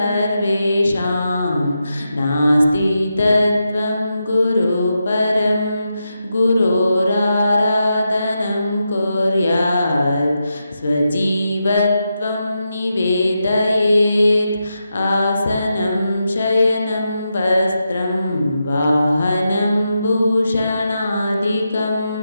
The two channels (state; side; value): inverted; both; correlation -0.87